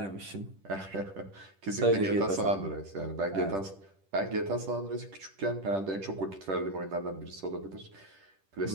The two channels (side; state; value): left; late; 10 ms